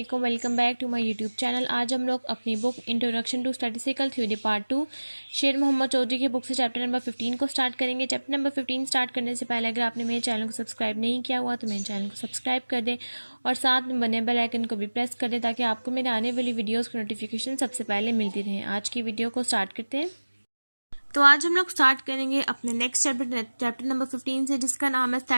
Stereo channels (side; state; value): both; inverted; correlation -1.00